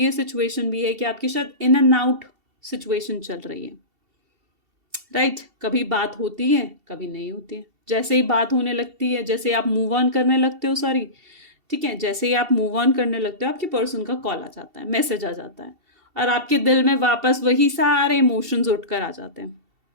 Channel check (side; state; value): left; late; 2.7 ms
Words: सिचुएशन भी है कि आपके शायद इन एंड आउट सिचुएशन चल रही है, राइट। कभी बात होती है, कभी नहीं होती है। जैसे ही बात होने लगती है, जैसे आप मूव ऑन करने लगते हो, सॉरी, ठीक है, जैसे ही आप मूव ऑन करने लगते हो, आपके पर्सन का कॉल आ जाता है, मैसेज आ जाता है, और आपके दिल में वापस वही सारे इमोशंस उठकर आ जाते